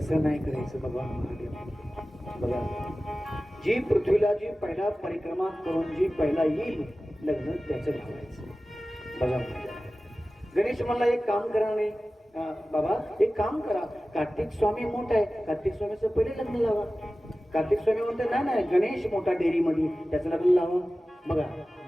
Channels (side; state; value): both; normal; correlation 0.96